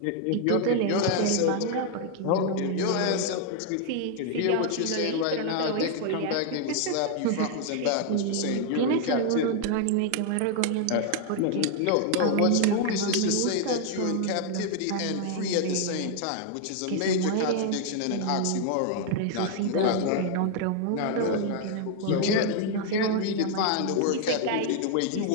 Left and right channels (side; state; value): both; different; correlation 0.00